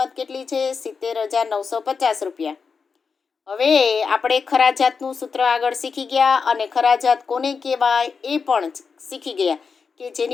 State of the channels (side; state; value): right; quieter; 5.4 dB